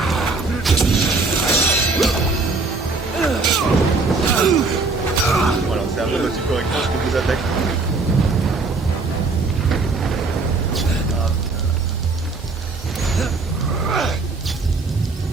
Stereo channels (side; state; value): left; quieter; 3.9 dB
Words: Voilà, c'est un peu aussi correctement ce que vous attaquez.